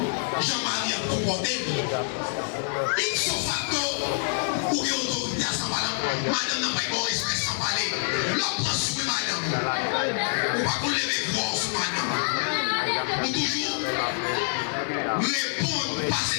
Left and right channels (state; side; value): silent; right; 61 dB below the other